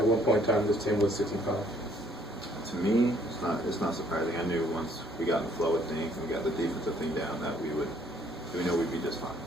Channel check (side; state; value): both; normal; correlation 0.63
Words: one point in time this team was 6-5? To me, it's not surprising. I knew once we got in the flow of things and we got the defensive thing down that we know we'd be just fine.